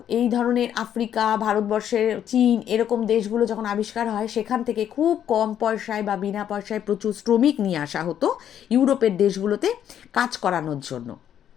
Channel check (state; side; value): quieter; right; 9.8 dB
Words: এই ধরনের আফ্রিকা, ভারতবর্ষের চীন, এরকম দেশগুলো যখন আবিষ্কার হয়, সেখান থেকে খুব কম পয়সায় বা বিনা পয়সায় প্রচুর শ্রমিক নিয়ে আসা হতো ইউরোপের দেশগুলোতে কাজ করানোর জন্য।